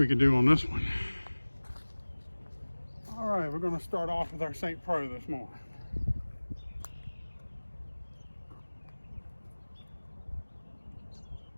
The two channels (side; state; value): both; inverted; correlation -1.00